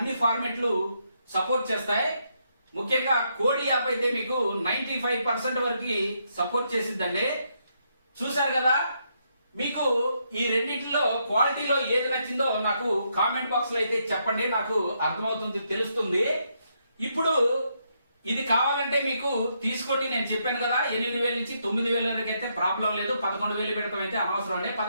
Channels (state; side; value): inverted; both; correlation -0.77